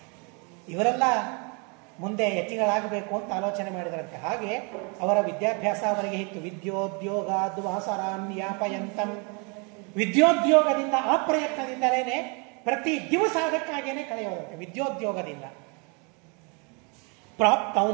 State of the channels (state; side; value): quieter; left; 33.4 dB